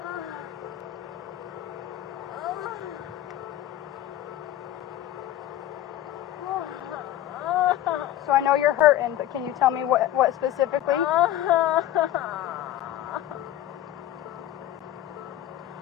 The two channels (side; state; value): right; quieter; 12.8 dB